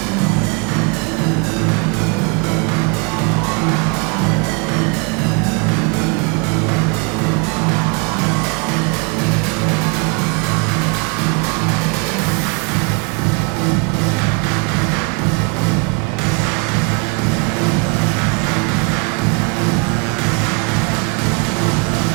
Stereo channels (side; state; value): left; quieter; 31.2 dB